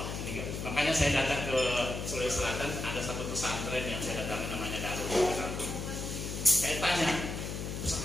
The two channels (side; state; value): left; noise; hum, 5 dB below the sound